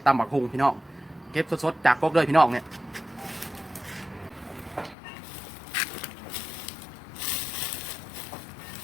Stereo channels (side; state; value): right; drops out; at 5.0 s